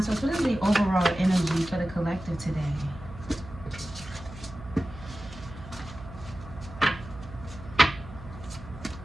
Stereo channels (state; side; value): noise; right; hum, 15 dB below the sound